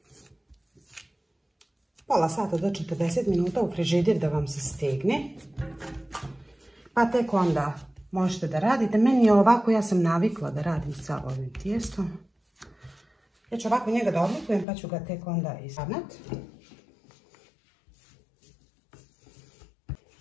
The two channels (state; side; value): drops out; right; at 14.7 s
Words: pola sata do 40 minuta u frižider da vam se stegne. Pa tek onda možete da radite. Meni je ovako, ja sam navikla da radim sa ovim tijestom. Ja ću ovako njega da oblikujem pa ću ga tek onda ispravnati.